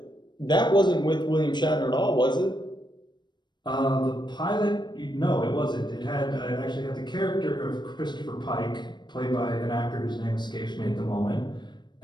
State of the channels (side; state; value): right; late; 0.22 ms